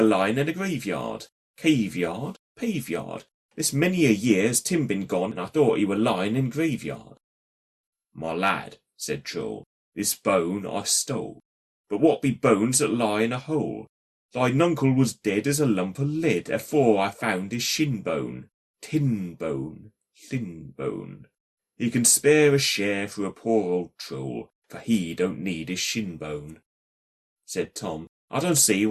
line in a graveyard. Caveyard, paveyard. This many a year has Tim been gone, and I thought he were lying in graveyard." "My lad," said Troll, "this bone I stole. But what be bones that lie in a hole? Thine uncle was dead as a lump of lead, afore I found his shin bone. Tin bone, thin bone. He can spare a share for a poor old troll, for he don't need his shin bone." Said Tom, "I don't see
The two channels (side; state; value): both; identical; correlation 1.00